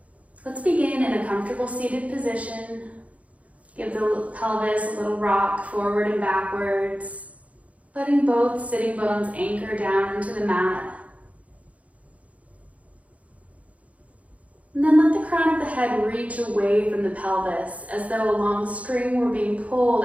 Let's begin in a comfortable seated position. Give the pelvis a little rock forward and backwards, letting both sitting bones anchor down into the mat. And then let the crown of the head reach away from the pelvis as though a long string were being pulled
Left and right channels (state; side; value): late; left; 0.067 ms